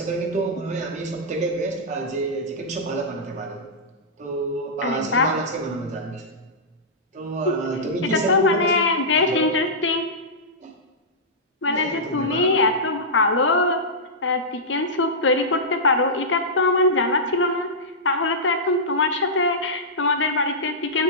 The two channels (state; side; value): normal; both; correlation -0.13